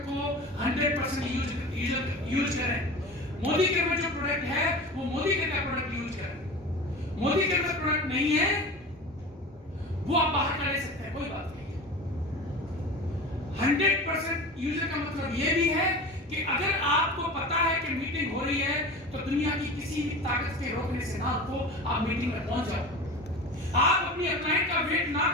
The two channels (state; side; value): normal; both; correlation 0.33